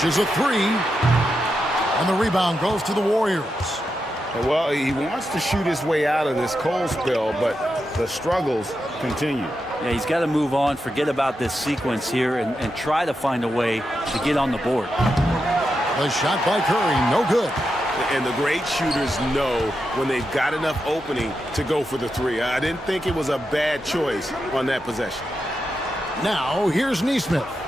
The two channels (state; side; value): normal; both; correlation 0.87